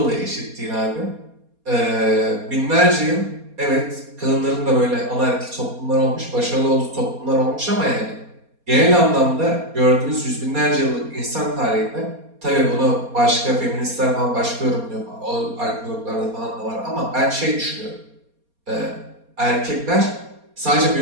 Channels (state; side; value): late; left; 4.2 ms